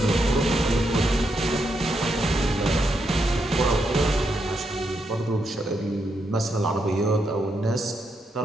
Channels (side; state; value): both; normal; correlation 0.81